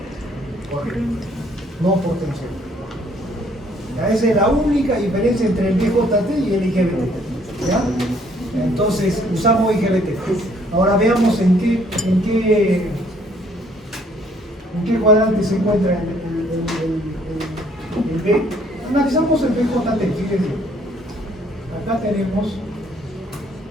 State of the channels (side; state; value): both; normal; correlation 0.63